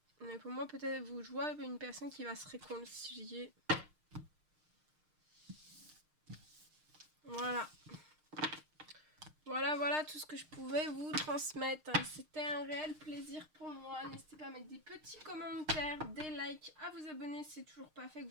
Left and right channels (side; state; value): left; late; 6.5 ms